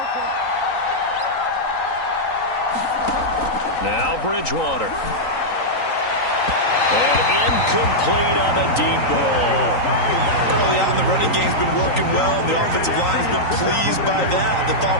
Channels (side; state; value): right; late; 3.9 ms